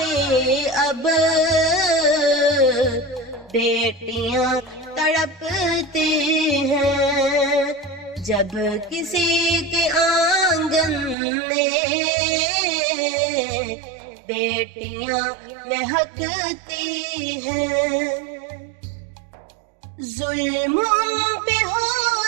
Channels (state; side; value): drops out; left; at 11.2 s